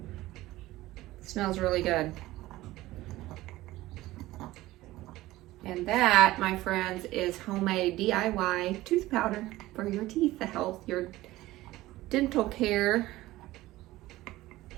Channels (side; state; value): left; quieter; 17.2 dB